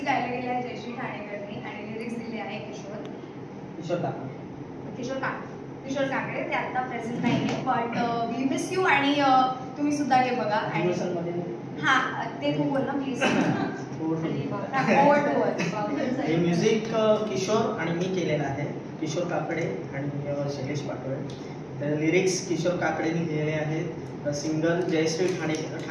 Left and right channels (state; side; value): identical; both; correlation 1.00